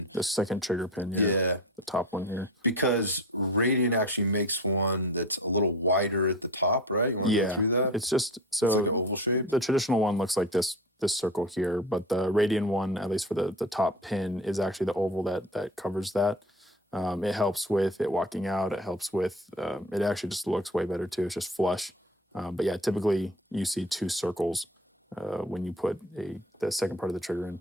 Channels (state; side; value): normal; both; correlation 0.34